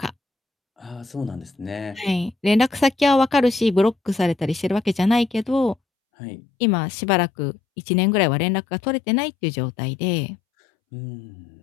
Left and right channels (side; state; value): right; drops out; at 5.8 s